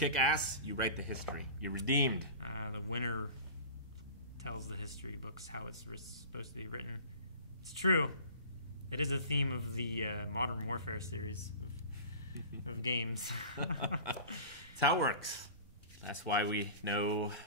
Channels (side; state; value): both; inverted; correlation -0.38